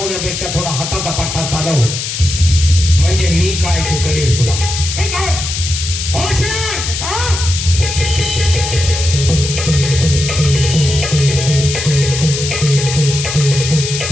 थोडा हाताचा पट्टा चालव, म्हणजे मी काय ते करेल तुला. ठीक आहे.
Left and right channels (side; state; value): left; noise; hiss, 5 dB below the sound